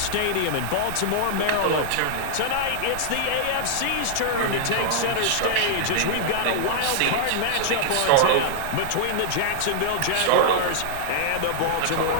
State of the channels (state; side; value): different; both; correlation -0.01